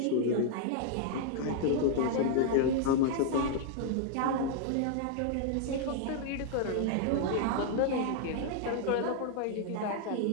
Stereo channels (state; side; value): different; both; correlation 0.00